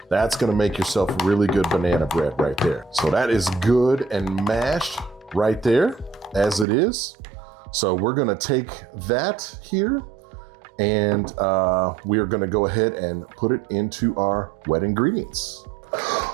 That's gonna make yourself really good banana bread right there. So that is good and mashed right there as it is. So we're gonna take that here, and we are gonna go ahead and put it into our wet ingredients.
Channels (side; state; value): left; drops out; at 6.7 s